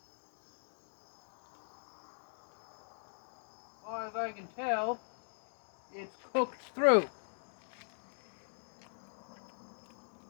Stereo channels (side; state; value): right; silent; digital silence